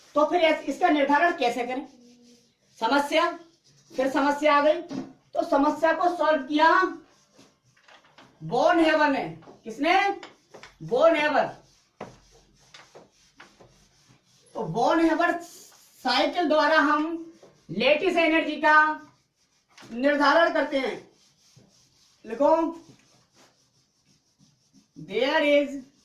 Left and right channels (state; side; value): identical; both; correlation 1.00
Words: तो फिर इसका निर्धारण कैसे करें, समस्या, फिर समस्या आ गई, तो समस्या को सॉल्व किया बोन हेवर ने। किसने, बोन हेवर। तो बोन हेवर साइकिल द्वारा हम लेटिस एनर्जी का निर्धारण करते हैं। लिखो, there is